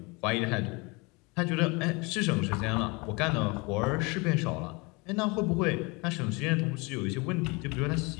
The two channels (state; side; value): quieter; right; 27.7 dB